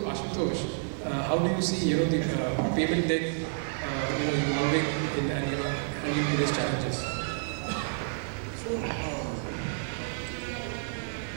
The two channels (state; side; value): silent; left; 58 dB below the other